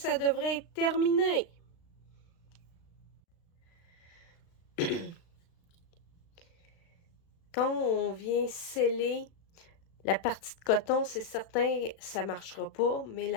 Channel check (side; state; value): right; late; 36 ms